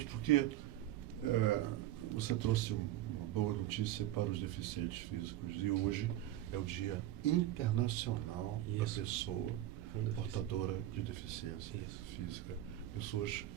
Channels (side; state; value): left; quieter; 13.8 dB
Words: porque você trouxe uma boa notícia para os deficientes físicos. E hoje é o Dia Internacional da Pessoa Portadora de Deficiência Física. Pessoas